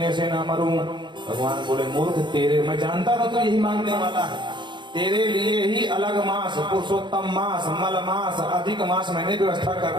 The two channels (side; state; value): left; late; 0.23 ms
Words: से ना मरूं। भगवान बोले मूर्ख, तेरे मैं जानता था तो यही मांगने वाला है, तेरे लिए ही अलग मास, पुरुषोत्तम मास, मल मास, अधिक मास मैंने व्यवस्था